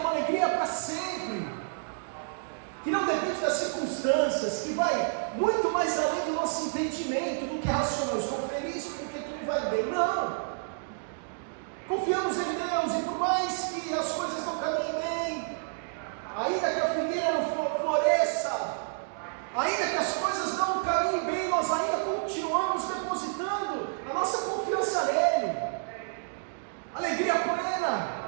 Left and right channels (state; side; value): silent; left; digital silence